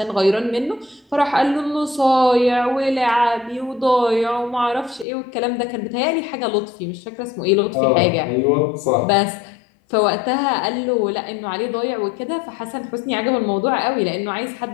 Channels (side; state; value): right; drops out; at 5.1 s